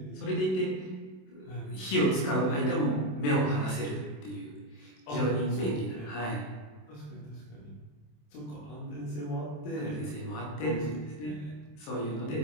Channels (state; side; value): late; right; 27 ms